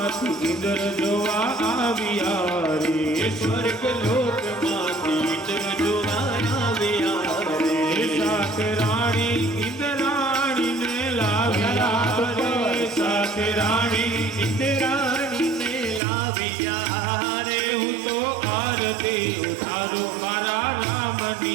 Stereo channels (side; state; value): left; drops out; at 16.0 s